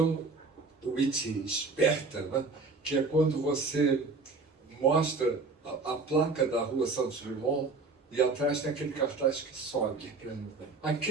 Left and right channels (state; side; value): quieter; left; 4.0 dB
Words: witty, esperta, né? Que é quando você mostra a placa da rua Santos Dumont e atrás tem aquele cartaz que sobe.